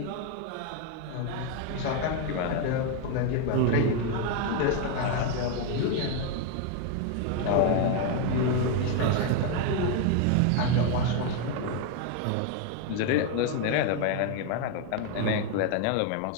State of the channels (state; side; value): different; both; correlation 0.01